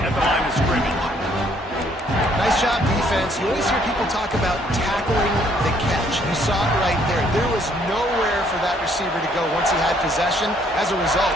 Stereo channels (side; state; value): both; normal; correlation 0.65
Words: the line of scrimmage. Nice job, defense. You always hear people talk about tackling the catch. You saw it right there. There was nowhere for that receiver to go once he had possession. As a result,